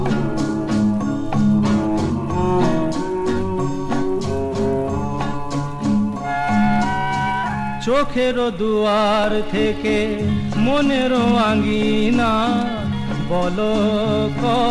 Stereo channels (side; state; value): both; identical; correlation 1.00